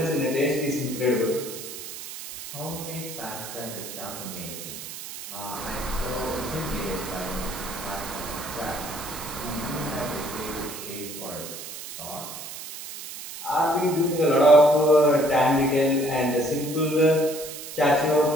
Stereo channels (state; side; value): noise; right; hiss, 10 dB below the sound